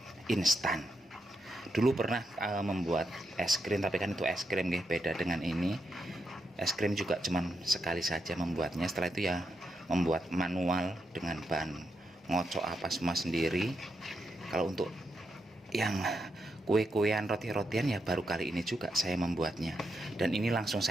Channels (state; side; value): normal; both; correlation 0.83